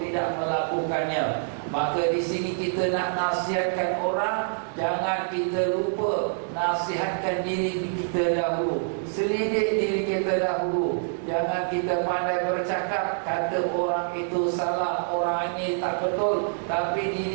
melakukannya? Maka di sini kita nak nasihatkan orang, jangan kita lupa nasihatkan diri kita dahulu, selidik diri kita dahulu. Jangan kita pandai bercakap, kata orang itu salah, orang ini tak betul, tapi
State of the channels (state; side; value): silent; left; digital silence